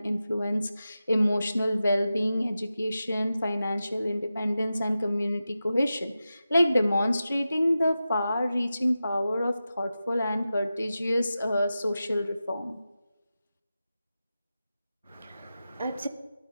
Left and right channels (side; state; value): both; inverted; correlation -0.92